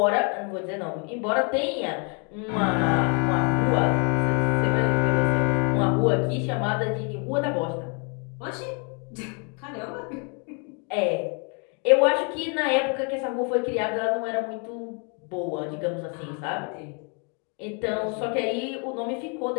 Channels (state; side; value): quieter; right; 36.8 dB